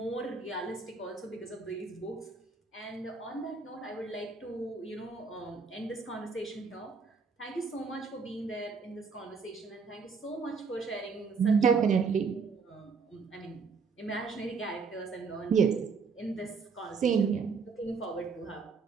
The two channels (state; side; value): quieter; left; 5.2 dB